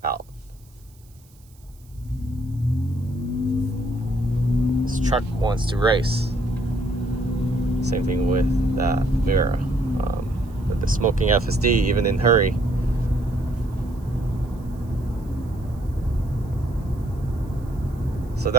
out. This truck wants to race. Same thing with that Vera. With the smoking FSD, even in hurry. So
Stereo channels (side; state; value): right; noise; hiss, 30 dB below the sound